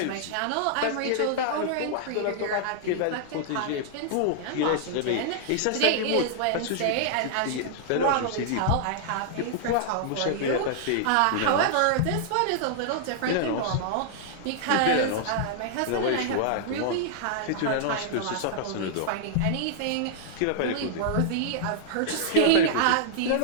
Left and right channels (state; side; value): different; both; correlation -0.01